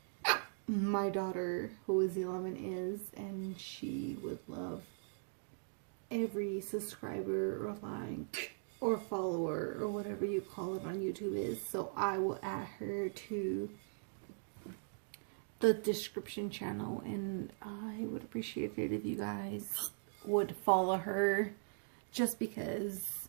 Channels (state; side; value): silent; left; digital silence